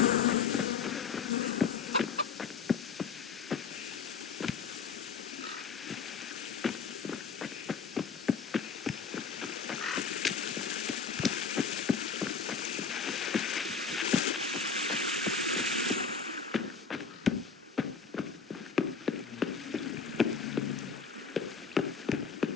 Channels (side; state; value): right; quieter; 5.9 dB